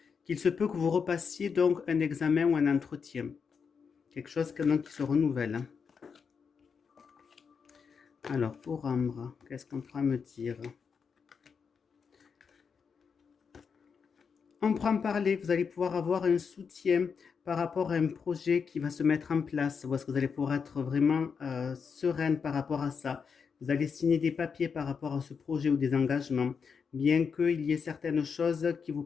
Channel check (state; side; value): quieter; right; 6.0 dB